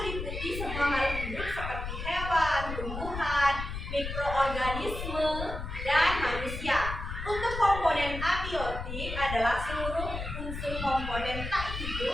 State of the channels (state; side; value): noise; left; rumble, 6 dB below the sound